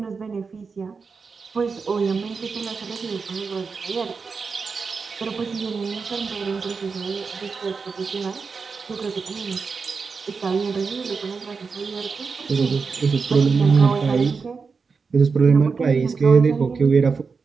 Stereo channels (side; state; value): left; quieter; 5.0 dB